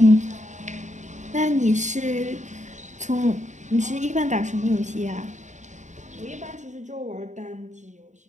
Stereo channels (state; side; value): late; left; 0.35 ms